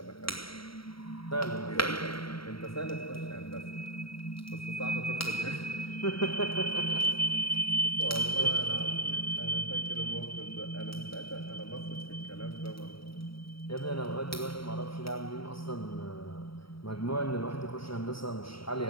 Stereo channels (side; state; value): right; late; 0.75 ms